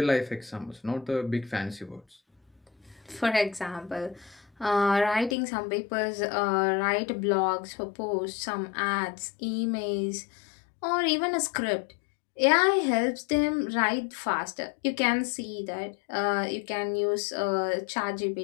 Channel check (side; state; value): right; drops out; at 5.4 s